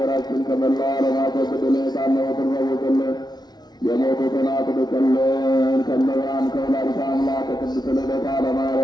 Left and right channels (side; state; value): right; late; 0.19 ms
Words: ከመላው ዓለም አስወግድልን። የታመሙትን ፈውስልን። የሞቱትን አጽድቅልን። ከመብርሃን ከወላዲተ አምላክ ከቅድስት ልደታ